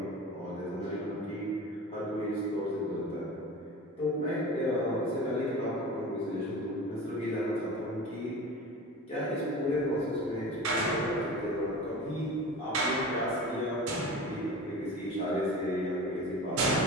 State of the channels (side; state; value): both; normal; correlation 0.34